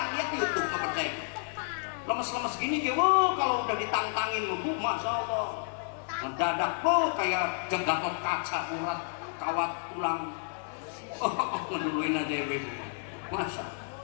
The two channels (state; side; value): silent; right; 57 dB below the other